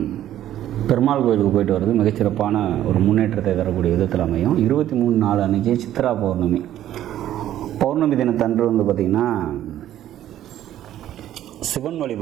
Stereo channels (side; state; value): left; quieter; 12.3 dB